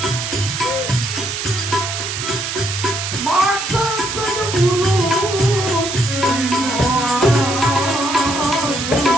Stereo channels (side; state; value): right; noise; hiss, 4 dB below the sound